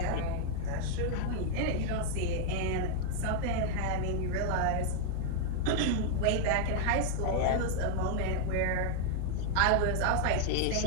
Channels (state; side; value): different; both; correlation 0.00